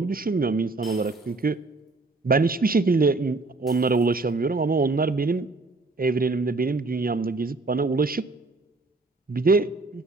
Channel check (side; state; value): left; quieter; 3.4 dB